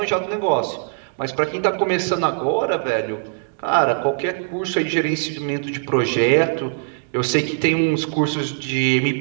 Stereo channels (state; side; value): silent; left; digital silence